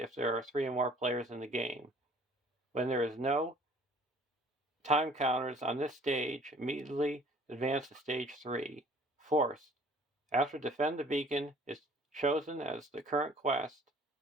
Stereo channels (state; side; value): normal; both; correlation 0.53